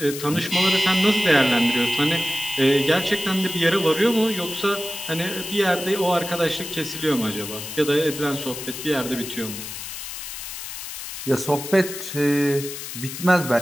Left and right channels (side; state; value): left; noise; hiss, 9 dB below the sound